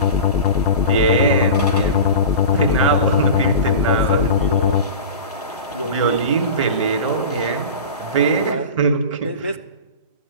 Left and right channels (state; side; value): inverted; both; correlation -0.31